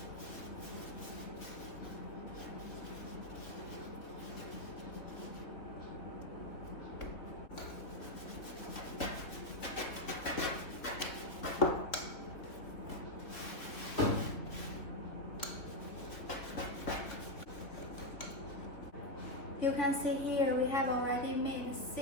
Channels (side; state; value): right; late; 3.4 ms